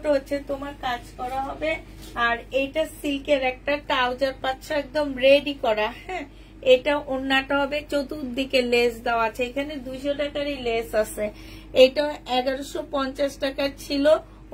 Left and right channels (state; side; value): identical; both; correlation 1.00